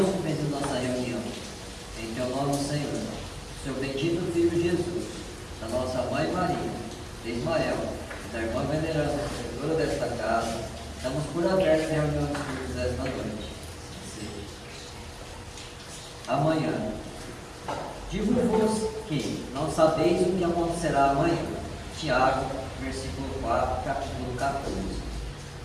em nossa reunião. Em teu nome, Senhor, seu bendito Filho Jesus, da nossa Mãe Maria, de Ismael e da irmã veneranda, protetora desta casa, estamos por aberto em reunião dos cultos desta noite. Amanhã. Digo-vos que não sabeis o que acontecerá amanhã. Tiago, versículo 4, capítulo 14.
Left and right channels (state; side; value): identical; both; correlation 1.00